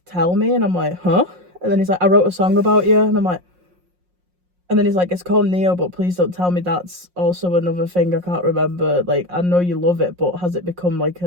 tell me. And I'm like, huh? And then he's like, I wrote a song about you. And I'm like, and then he's like, it's called Neo, but please don't tell me that's also another thing I can't remember. Like, I know you love it, but has it become like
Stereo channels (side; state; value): left; late; 5.6 ms